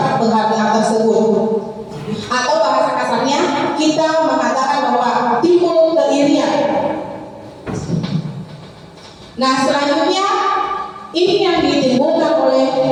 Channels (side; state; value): both; identical; correlation 1.00